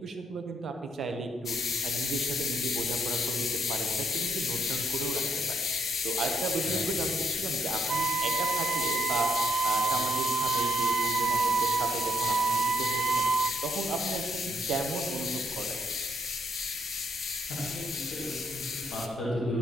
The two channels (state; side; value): normal; both; correlation 0.74